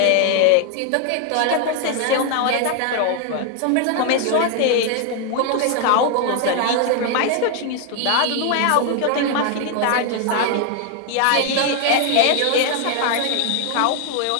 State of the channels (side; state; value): both; different; correlation 0.00